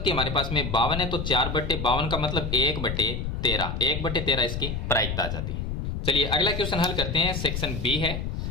हमारे पास में 52 है, तो 4/52 का मतलब 1/13, 1/13 इसकी प्रायिकता आ जाती है। चलिए अगला क्वेश्चन हल करते हैं। सेक्शन बी है।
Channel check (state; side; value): noise; left; rumble, 3 dB below the sound